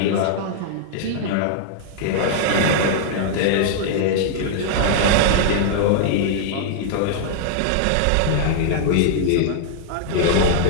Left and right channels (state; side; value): different; both; correlation -0.01